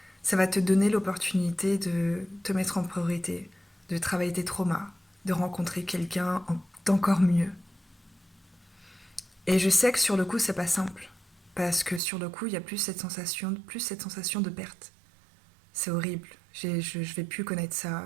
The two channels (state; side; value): drops out; left; at 12.0 s